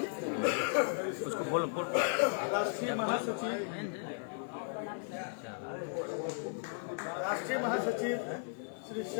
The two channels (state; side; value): silent; right; 54 dB below the other